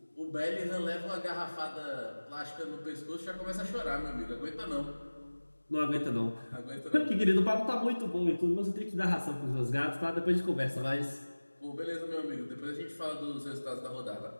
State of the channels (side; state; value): both; inverted; correlation -1.00